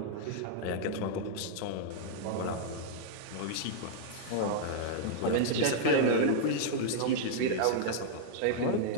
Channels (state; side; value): different; both; correlation -0.01